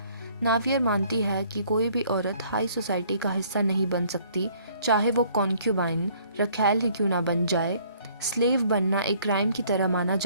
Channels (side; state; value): both; inverted; correlation -0.61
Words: नावियर मानती है कि कोई भी औरत हाई सोसाइटी का हिस्सा नहीं बन सकती, चाहे वो कॉन्क्यूबाइन रखैल ही क्यों ना बन जाए। स्लेव बनना एक क्राइम की तरह माना